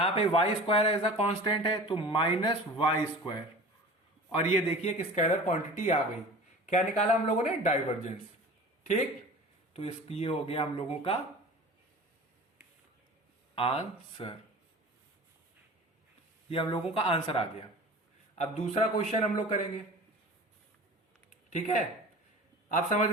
पे y² एज अ कांस्टेंट है तो माइनस y², और ये देखिए कि स्केलर क्वांटिटी आ गई। क्या निकाला हम लोगों ने? डाइवर्जेंस, ठीक। तो ये हो गया हम लोगों का आंसर, ये हम लोगों का आंसर आ गया। अब दूसरा क्वेश्चन हम लोग करेंगे, ठीक है। आप समझ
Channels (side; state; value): both; normal; correlation 0.39